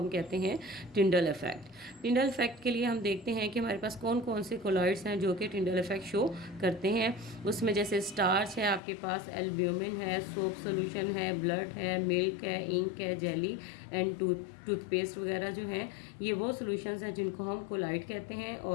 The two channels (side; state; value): right; drops out; at 8.8 s